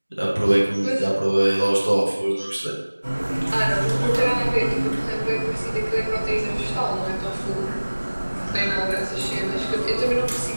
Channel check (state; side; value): inverted; both; correlation -1.00